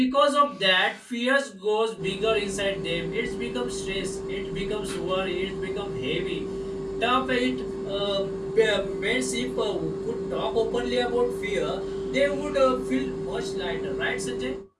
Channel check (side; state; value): both; identical; correlation 1.00